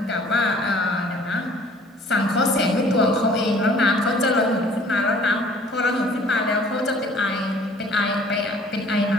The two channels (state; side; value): normal; both; correlation 0.54